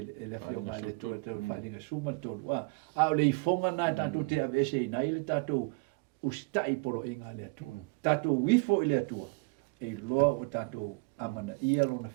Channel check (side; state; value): left; quieter; 29.3 dB